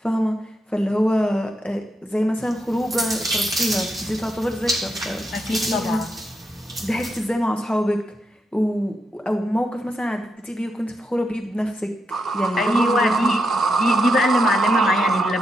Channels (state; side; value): normal; both; correlation 0.83